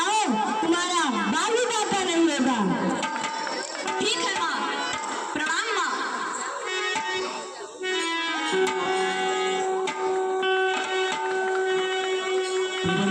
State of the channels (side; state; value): both; identical; correlation 1.00